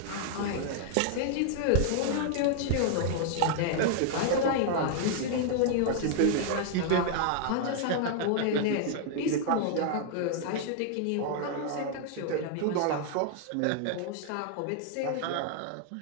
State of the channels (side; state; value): both; different; correlation 0.00